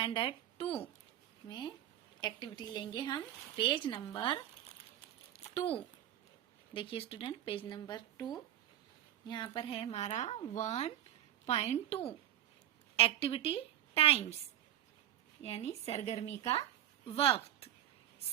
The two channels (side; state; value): left; quieter; 12.2 dB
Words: 2 में एक्टिविटी लेंगे हम पेज नंबर 2। देखिए स्टूडेंट, पेज नंबर 2 यहाँ पर है हमारा 1.2 एक्टिविटी टाइम्स यानी सरगर्मी का वक्त।